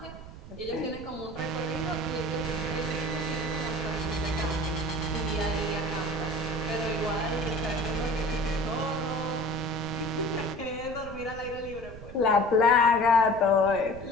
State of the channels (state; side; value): noise; right; rumble, 14 dB below the sound